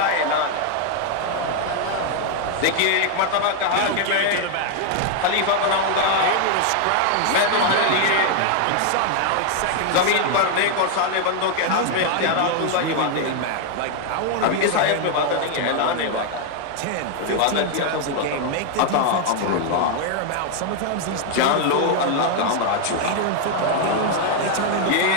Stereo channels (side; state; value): both; different; correlation 0.00